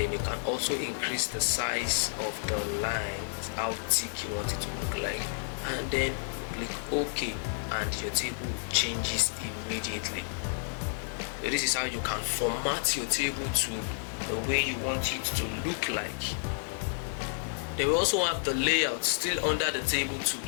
you can also increase the size of the lines, how thick you want it to look like. And then click OK and your table changes immediately. So this is how you can format your table to the way you want it to look like. Then we also have the layout still under the table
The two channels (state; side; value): silent; right; digital silence